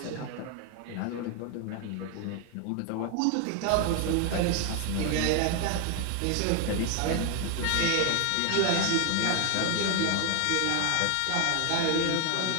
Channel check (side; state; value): both; different; correlation 0.00